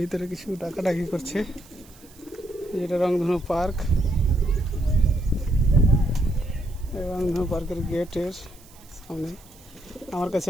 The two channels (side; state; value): right; noise; hiss, 25 dB below the sound